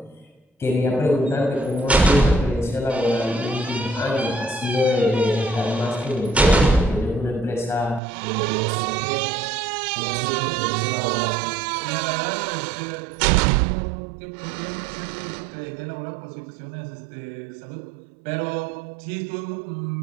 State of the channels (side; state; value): left; drops out; at 8.0 s